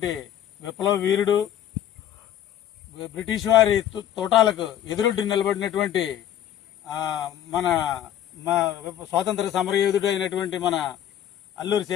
విప్లవ వీరుడు బ్రిటిష్ వారి తోటాలకు ఎదురొడ్డి నిలబడినటువంటి మన స్వాతంత్ర సమరయోధుడు అయినటువంటి మన అల్లూరి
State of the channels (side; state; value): right; quieter; 10.8 dB